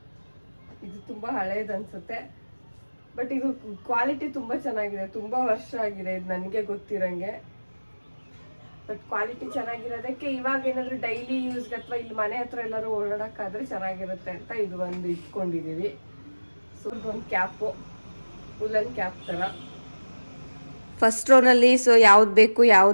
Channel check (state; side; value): inverted; both; correlation -1.00